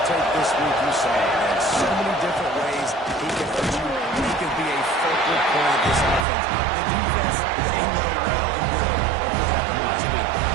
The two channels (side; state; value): left; drops out; at 6.2 s